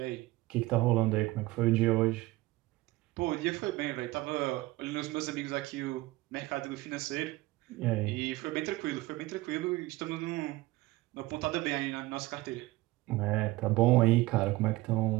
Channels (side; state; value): left; quieter; 19.6 dB